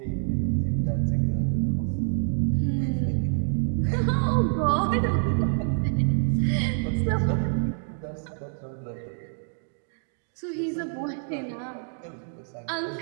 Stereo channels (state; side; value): silent; left; 60 dB below the other